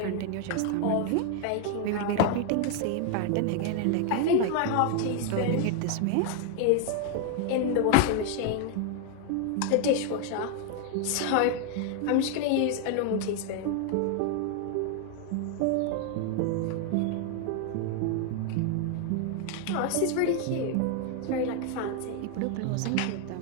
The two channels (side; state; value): both; different; correlation 0.00